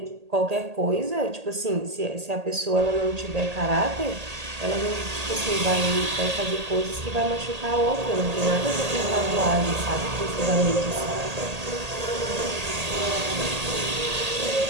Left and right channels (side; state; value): left; late; 1.8 ms